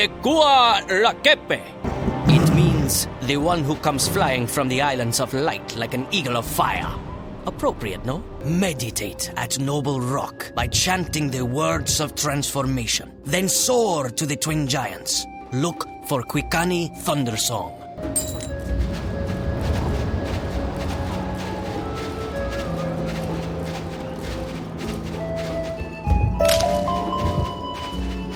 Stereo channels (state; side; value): identical; both; correlation 1.00